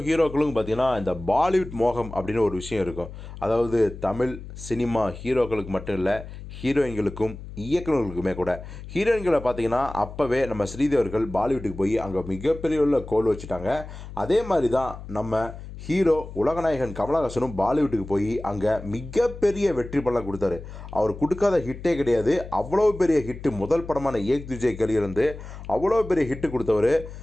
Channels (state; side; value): noise; left; hum, 13 dB below the sound